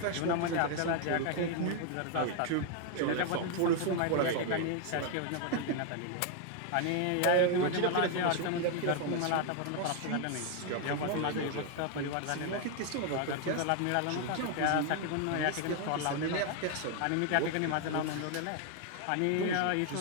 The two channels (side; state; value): both; different; correlation 0.00